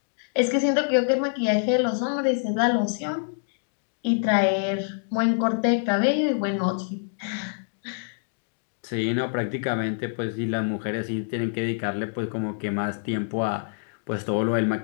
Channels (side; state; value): right; silent; digital silence